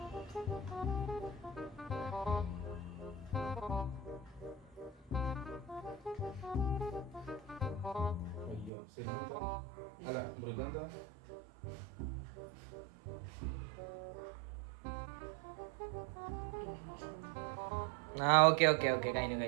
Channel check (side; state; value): left; drops out; at 8.7 s